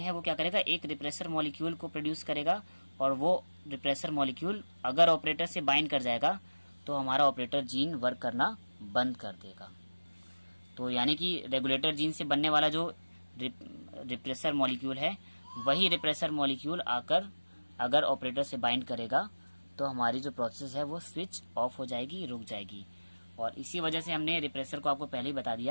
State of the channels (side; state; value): both; inverted; correlation -1.00